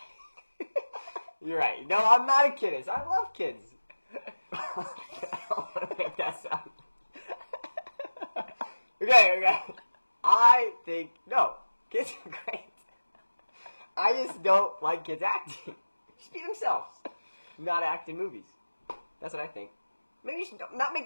You're right. No, I'm not a kidist. I love kids. I don't want to make that sound. Okay. I think, no, kids are great. I just don't like kids acting. Just be themselves. Not act in movies. That's what I think. Maybe you should not make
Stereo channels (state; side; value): inverted; both; correlation -1.00